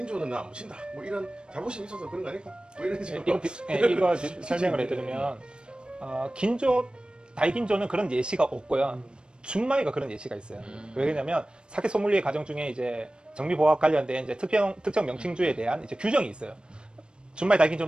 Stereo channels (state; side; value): late; left; 0.053 ms